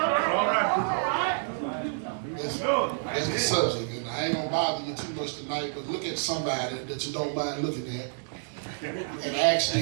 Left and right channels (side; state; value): left; silent; digital silence